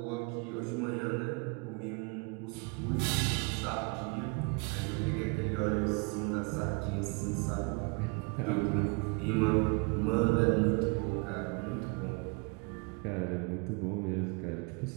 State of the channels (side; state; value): left; quieter; 31.5 dB